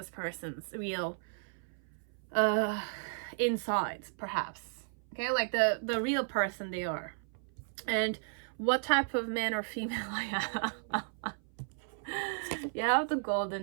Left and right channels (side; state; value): left; silent; 55 dB below the other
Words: person's real insides, perhaps. Okay, like the real person they are. And what type of man or female I am? You have the golden